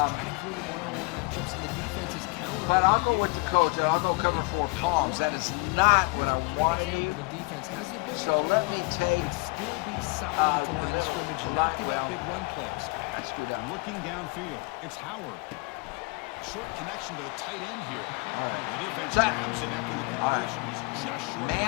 But I'll go with the coach, and I'll go cover 4 palms. That is not what I want to do. So let me take still be solid to line of scrimmage, not give up big run plays. Looking downfield, it's Howard. Short connection to the tight end here. The defense grabs it after the conversion is just short.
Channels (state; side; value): quieter; right; 27.2 dB